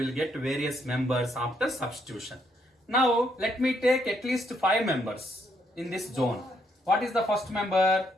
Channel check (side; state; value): both; normal; correlation 0.73